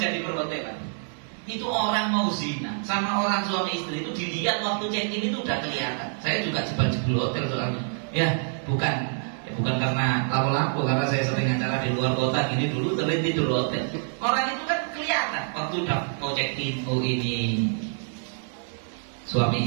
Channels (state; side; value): silent; left; 61 dB below the other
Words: di perhotelan itu orang mau zina sama orang suami istri itu dilihat waktu check in itu udah kelihatan. Saya juga jebol hotel soalnya. Ya, bukan bukan karena lapo-lapo, karena saya sering acara di luar kota gini dulu sering tidur hotel. Orang itu kan kelihatan waktu udah mau check in, oh ini